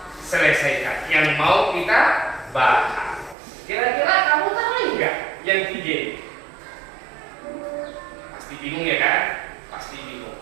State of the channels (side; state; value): left; drops out; at 3.4 s